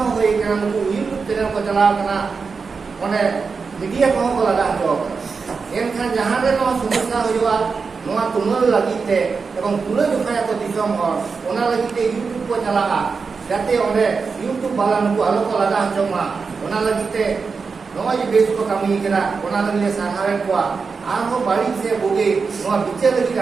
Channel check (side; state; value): left; quieter; 5.0 dB